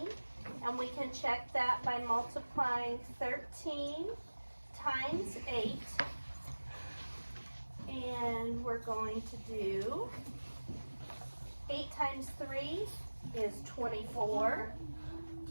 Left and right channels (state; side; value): inverted; both; correlation -1.00